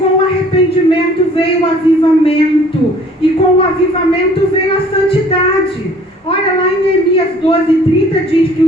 o arrependimento veio o avivamento. E com o avivamento veio a santidade. Olha lá em Neemias 12:30 diz que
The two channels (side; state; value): both; normal; correlation 0.54